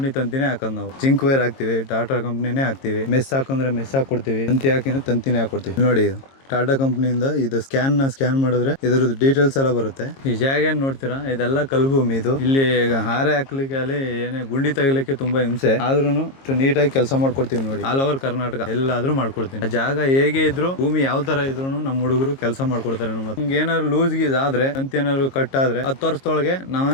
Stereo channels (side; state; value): right; late; 22 ms